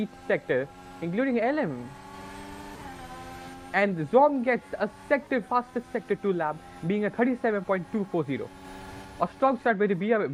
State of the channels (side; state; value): both; identical; correlation 1.00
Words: sector, including LM. And Zom gets a fastest sector 2 lap, being a 37.240. A strong start by the